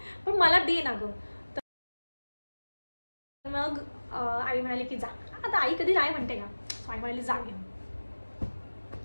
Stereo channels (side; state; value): both; inverted; correlation -1.00